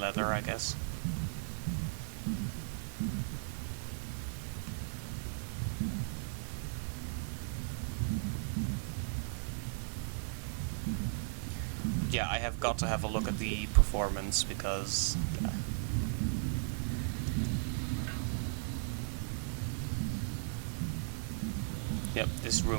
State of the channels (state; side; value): silent; left; digital silence